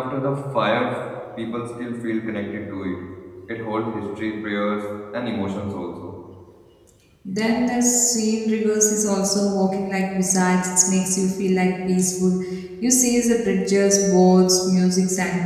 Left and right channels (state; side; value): identical; both; correlation 1.00